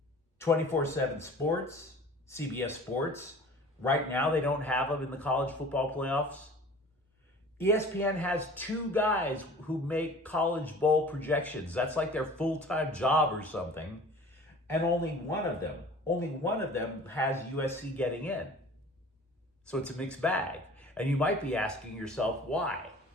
24/7 Sports, CBS Sports, right now they don't have them in the college football playoffs. ESPN has 2 guys who make college bowl projections. That's like their full-time job or something. And only one of them has USC getting in. So it's a mixed bag. And you might be asking yourself why,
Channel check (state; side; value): normal; both; correlation 0.44